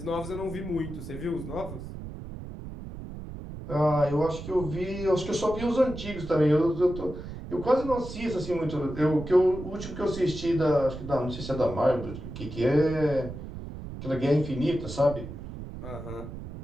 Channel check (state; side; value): noise; right; rumble, 10 dB below the sound